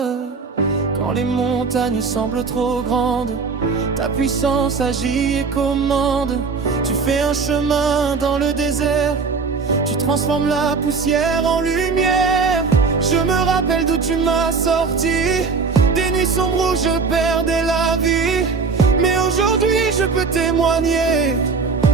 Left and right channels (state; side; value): quieter; left; 4.8 dB